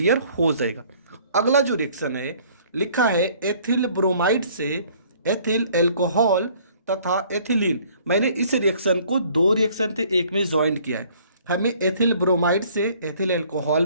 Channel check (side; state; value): both; inverted; correlation -0.57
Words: हो जाएगा। अगला जो रिएक्शन है लिखा है एथिल ब्रोमाइड से एथिल एल्कोहल तथा एथिलीन। मैंने इस रिएक्शन को 2 रिएक्शन थे एक में ज्वाइन किया है। हमें एथिल ब्रोमाइड से एथिल एल्कोहल